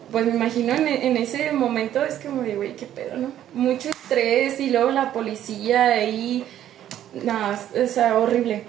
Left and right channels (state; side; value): quieter; left; 11.5 dB